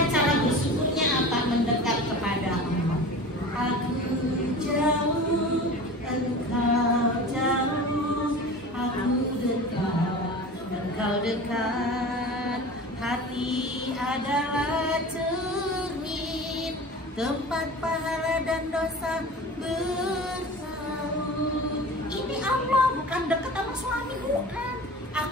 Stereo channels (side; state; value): both; normal; correlation 0.36